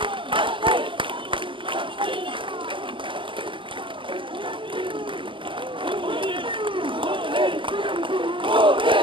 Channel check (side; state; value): left; late; 0.25 ms